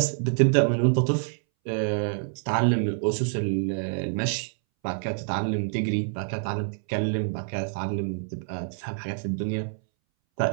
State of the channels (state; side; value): silent; left; 60 dB below the other